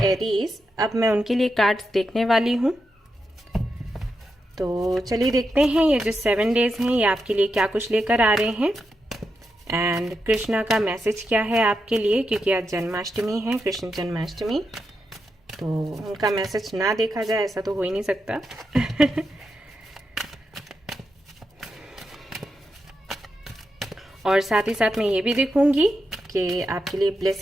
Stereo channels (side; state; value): both; normal; correlation 0.86